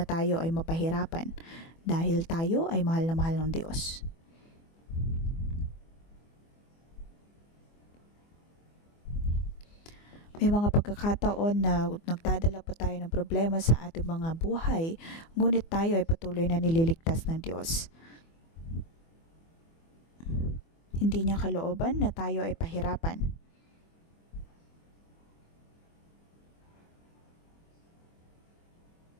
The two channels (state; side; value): late; right; 24 ms